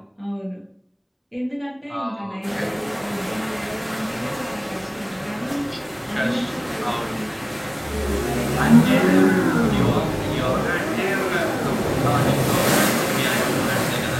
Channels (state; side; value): identical; both; correlation 1.00